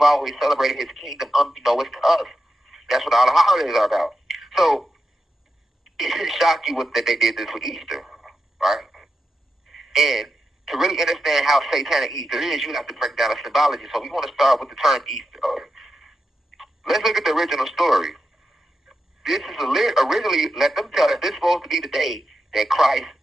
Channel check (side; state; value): both; normal; correlation 0.88